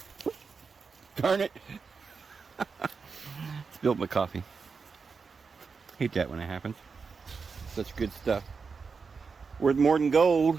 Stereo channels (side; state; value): left; quieter; 5.1 dB